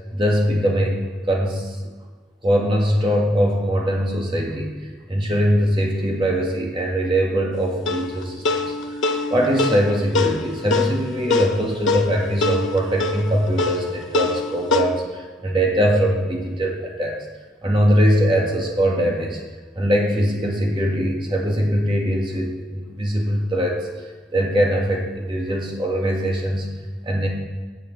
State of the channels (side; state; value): both; normal; correlation 0.70